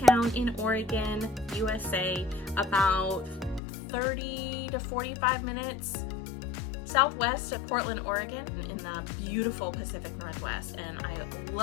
in Oregon, USA, about 30 to 45 minutes southwest of Portland, Oregon, in the beautiful Pacific Northwest, and I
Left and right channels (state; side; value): drops out; right; at 3.6 s